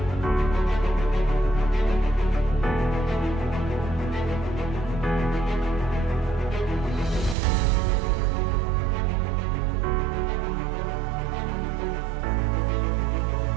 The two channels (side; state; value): left; drops out; at 7.4 s